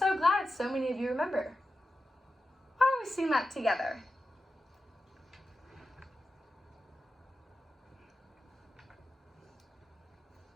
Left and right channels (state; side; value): normal; both; correlation 0.91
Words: glad so many of you remember. Why don't we sing that together?